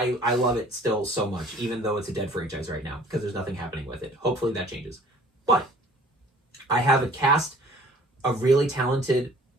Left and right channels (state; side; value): normal; both; correlation 0.52